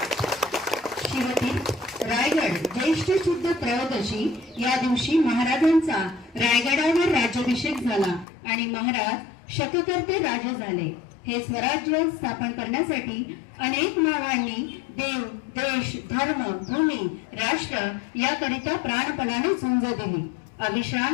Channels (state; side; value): drops out; right; at 8.2 s